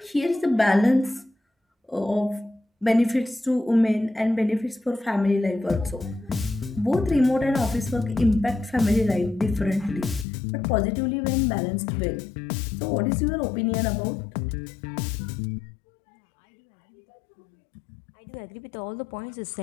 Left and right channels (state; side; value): drops out; right; at 10.2 s